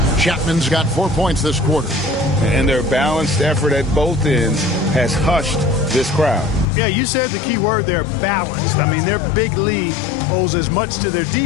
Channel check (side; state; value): right; drops out; at 6.7 s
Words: Chapman's got 4 points this quarter. And their balanced effort at both ends has hushed this crowd. Yeah, you said the key word there, balanced. I mean, their big lead owes as much to their